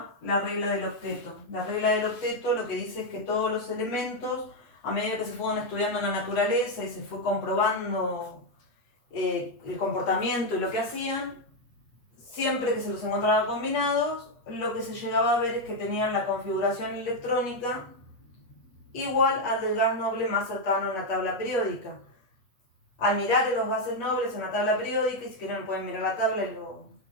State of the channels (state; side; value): late; right; 8.2 ms